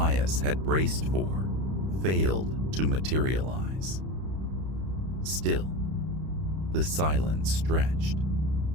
had braced for failed to materialize. Still, the silence stretched.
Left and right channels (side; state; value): left; late; 32 ms